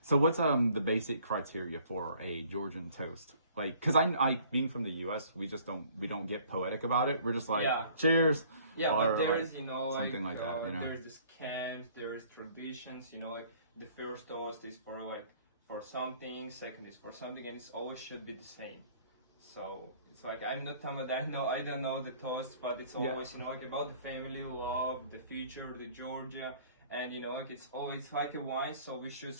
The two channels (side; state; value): both; inverted; correlation -0.56